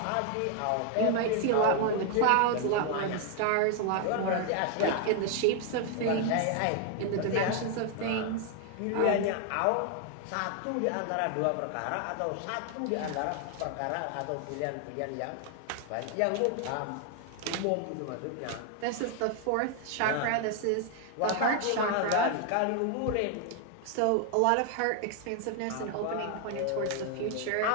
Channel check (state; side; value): different; both; correlation 0.00